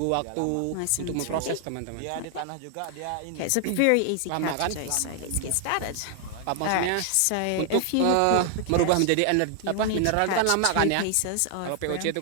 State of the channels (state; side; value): different; both; correlation 0.00